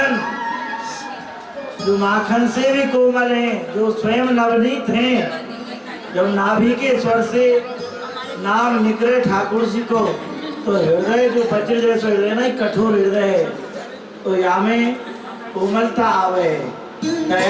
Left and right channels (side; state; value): both; identical; correlation 1.00